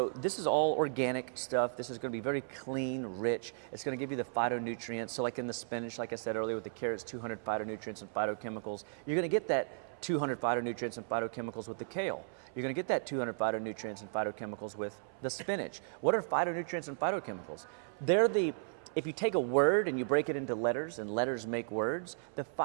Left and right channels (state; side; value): silent; left; 54 dB below the other